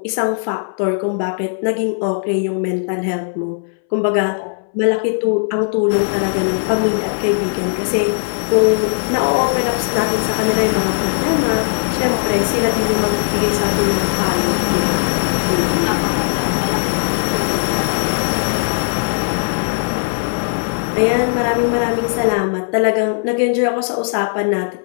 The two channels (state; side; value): silent; right; 64 dB below the other